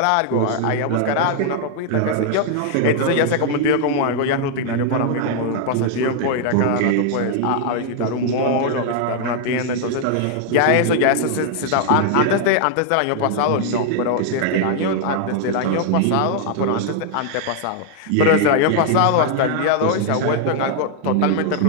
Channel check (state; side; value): different; both; correlation 0.00